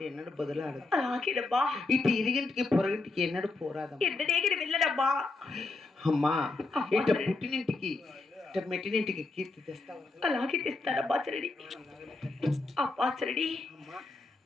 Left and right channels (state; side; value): quieter; right; 3.3 dB